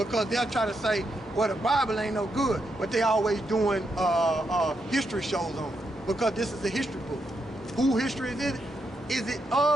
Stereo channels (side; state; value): both; normal; correlation 0.82